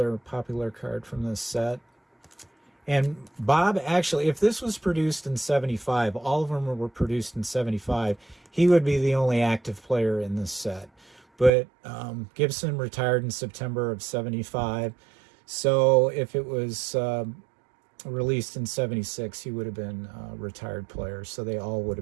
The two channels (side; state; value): left; drops out; at 11.5 s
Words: popular card from this set. And Bob, actually, if this was produced in 75, all of them were produced in 75, he would be the only active player in this set. But Gibson retired in September of 75, so if it was released in 76, he would have been a retired player, so they all would